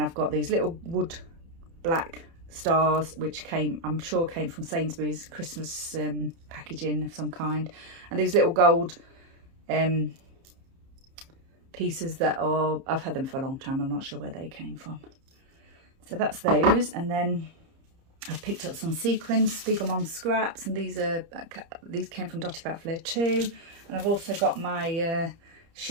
got these little wood black stars, which I'm sure came from Sainsbury's Christmas packaging of some kind, and these little gold pieces that are, I've had them for a long time, I'm not sure where they came from. So that's those. And then I've picked up some sequins, Spiegelman scraps, and these came from Dotty About Flair too. And I've also got my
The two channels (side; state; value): left; late; 30 ms